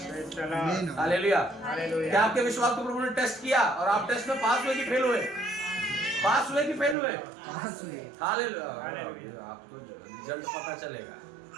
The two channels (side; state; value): left; drops out; at 7.0 s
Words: hallelujah. क्या आपके विश्वास को प्रभु ने टेस्ट किया और आप टेस्ट में पास हुए कि फेल हुए? पास हुए कि फेल हुए? हालेलुया। आपको रिजल्ट पता चलेगा।